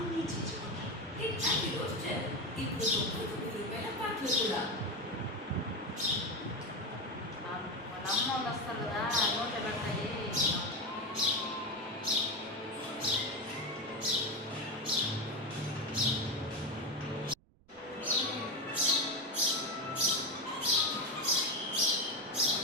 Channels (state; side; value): noise; right; rumble, 29 dB below the sound